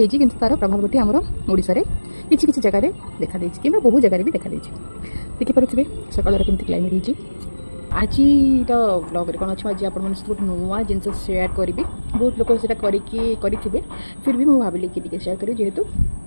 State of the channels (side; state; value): both; inverted; correlation -1.00